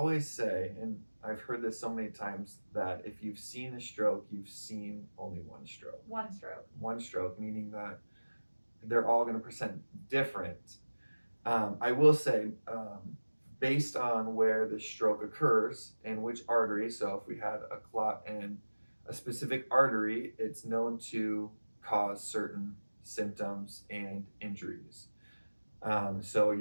say, and I've heard this so many times, that if you've seen a stroke, you've seen only one stroke. One stroke. One stroke, meaning that they're all going to present different. I will say, based on where the stroke occurs and which artery, so if we had a clot in a specific artery, it's known to cause certain symptoms and injuries. So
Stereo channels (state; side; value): inverted; both; correlation -1.00